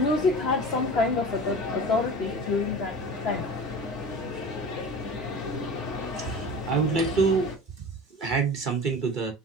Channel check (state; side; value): normal; both; correlation 0.36